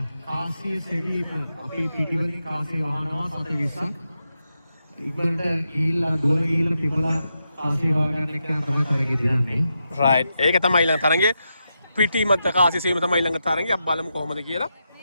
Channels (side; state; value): both; inverted; correlation -0.86